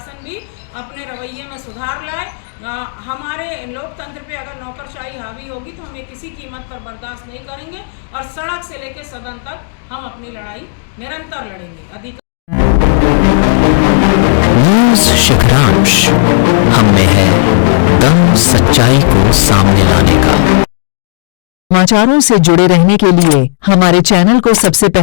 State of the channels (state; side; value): silent; right; digital silence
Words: भी अपने रवैये में सुधार लाए। हमारे लोकतंत्र पे अगर नौकरशाही हावी होगी तो हम ये किसी कीमत पर बर्दाश्त नहीं करेंगे और सड़क से लेकर सदन तक हम अपनी लड़ाई निरंतर लड़ेंगे। न्यूज़ शिखरांश, हम में है दम सच्चाई को सामने लाने का। समाचारों से जुड़े रहने के लिए हमारे चैनल को सबसे